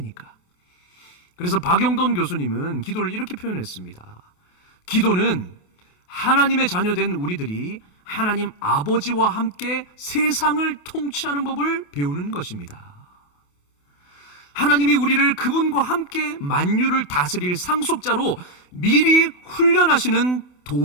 그래서 박영돈 교수님은 기도를 이렇게 표현했습니다. 기도는 하나님의 자녀된 우리들이 하나님 아버지와 함께 세상을 통치하는 법을 배우는 것입니다. 하나님이 우리를 그분과 함께 만유를 다스릴 상속자로 미리 훈련하시는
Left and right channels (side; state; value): right; late; 28 ms